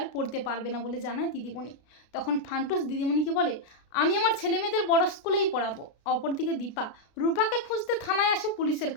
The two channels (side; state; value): right; late; 33 ms